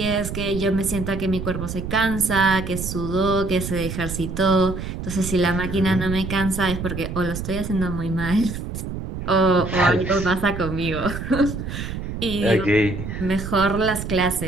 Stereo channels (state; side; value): noise; right; rumble, 6 dB below the sound